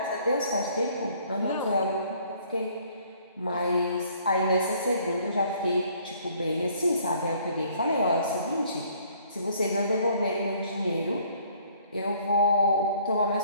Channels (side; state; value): both; inverted; correlation -0.60